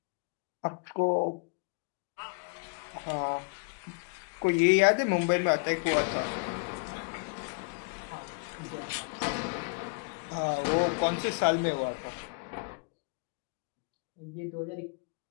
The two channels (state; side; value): quieter; right; 36.0 dB